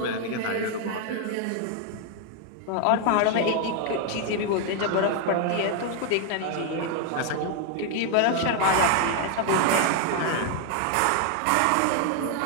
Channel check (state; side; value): different; both; correlation 0.00